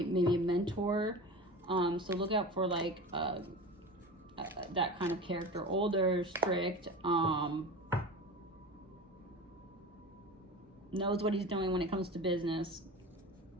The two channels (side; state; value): both; normal; correlation 0.32